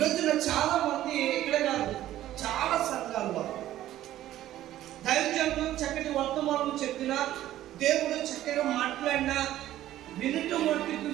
చాలా మంది, ఇక్కడ కాదు చాలా సంఘాల్లో దైవజనులు చక్కటి వర్తమానం చెప్పినా, దేవుడు చక్కగా మాట్లాడినా వినుట మట్టుకు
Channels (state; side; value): quieter; left; 13.5 dB